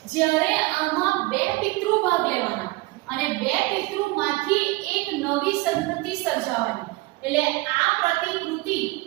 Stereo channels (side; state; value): left; quieter; 22.2 dB